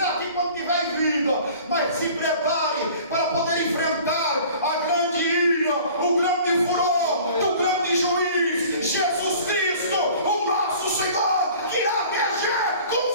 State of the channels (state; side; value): inverted; both; correlation -0.47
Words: aqui quando tiver em vida, mas se prepare para poder enfrentar a grande ira, o grande furor do grande juiz, Jesus Cristo, o nosso Senhor, que irá reger com